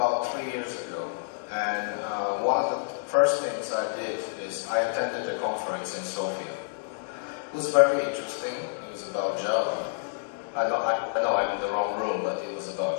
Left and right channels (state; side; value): silent; right; 59 dB below the other